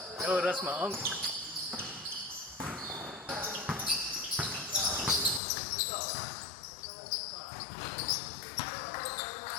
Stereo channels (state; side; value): drops out; right; at 5.4 s